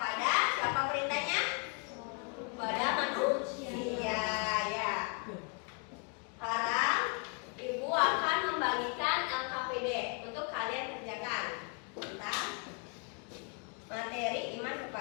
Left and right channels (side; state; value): right; quieter; 36.4 dB